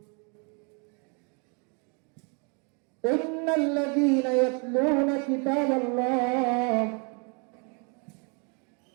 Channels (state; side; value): quieter; left; 35.9 dB